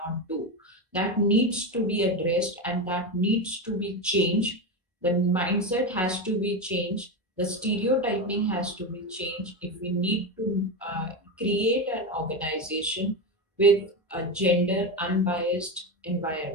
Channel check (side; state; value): both; normal; correlation 0.16